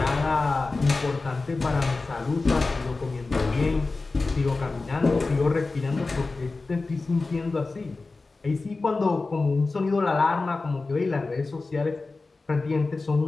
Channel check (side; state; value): right; quieter; 3.6 dB